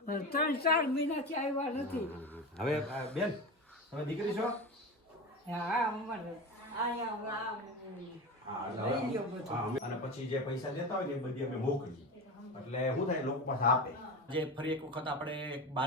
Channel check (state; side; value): normal; both; correlation 0.25